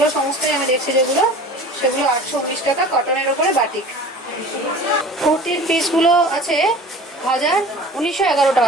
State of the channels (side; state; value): both; normal; correlation 0.41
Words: সমস্তই আমি দেখছি যেগুলো, সেগুলো 819 টাকা কটনের ওপরে বাটিক। কুর্তির পিসগুলো আছে 1911